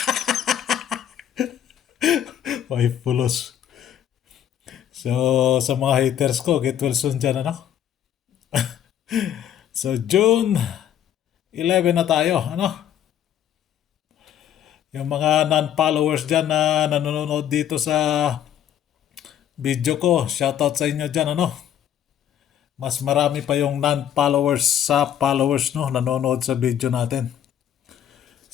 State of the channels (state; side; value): quieter; right; 10.2 dB